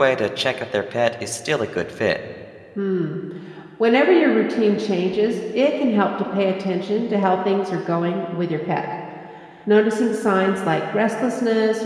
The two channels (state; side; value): identical; both; correlation 1.00